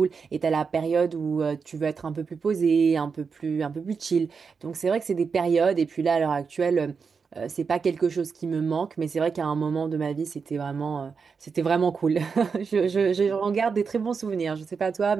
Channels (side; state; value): left; quieter; 5.5 dB